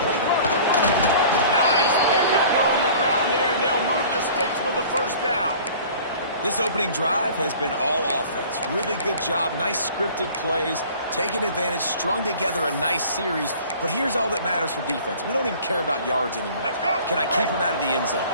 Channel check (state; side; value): inverted; both; correlation -0.46